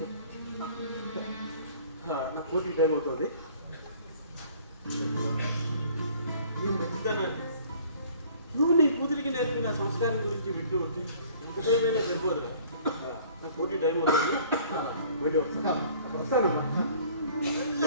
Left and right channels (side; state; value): both; inverted; correlation -0.52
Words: నా కోటి టైం అవుతుంది. నువ్వు మంచితనాన్ని, నువ్వు నీ కూతురికి నేర్పిన సంస్కారం గురించి వింటూ ఉంటే ఎంత టైం అయినా సరిపోదురా. నా కోటి టైం అవుతుంది, వెళ్ళి వస్తానమ్మా.